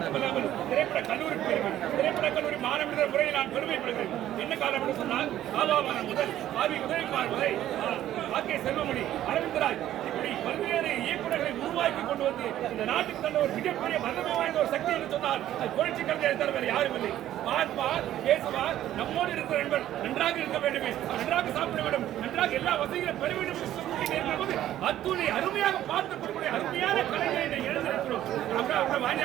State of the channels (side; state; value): left; quieter; 12.6 dB